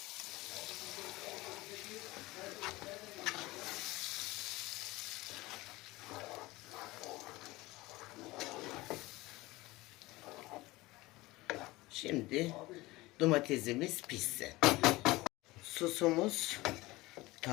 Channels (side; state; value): right; quieter; 20.3 dB